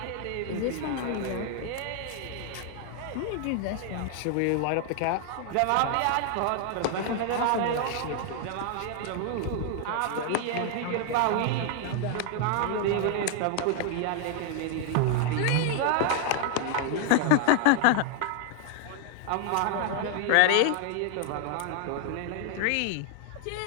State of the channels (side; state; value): both; different; correlation 0.00